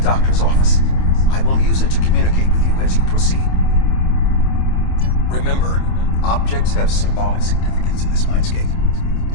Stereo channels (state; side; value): late; right; 27 ms